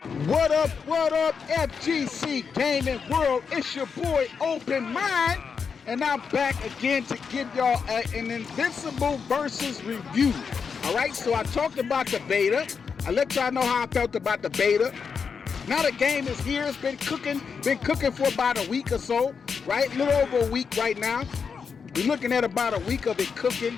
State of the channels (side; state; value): right; quieter; 6.0 dB